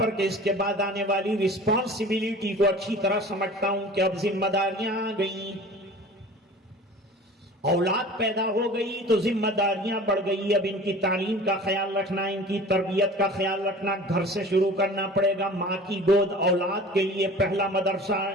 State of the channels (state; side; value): normal; both; correlation 0.41